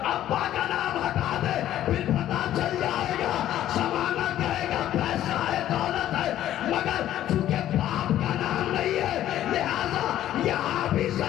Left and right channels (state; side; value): quieter; right; 12.4 dB